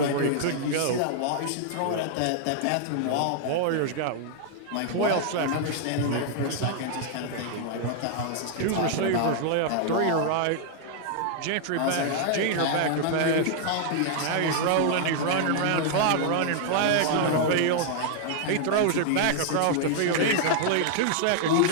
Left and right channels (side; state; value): both; different; correlation 0.00